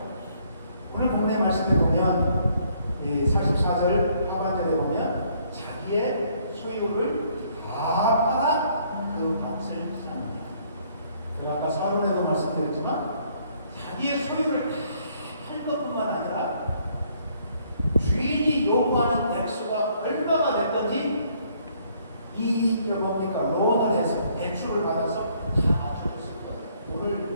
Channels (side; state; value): both; inverted; correlation -0.66